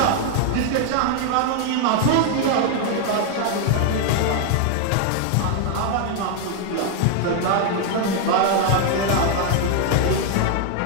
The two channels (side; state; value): both; different; correlation 0.01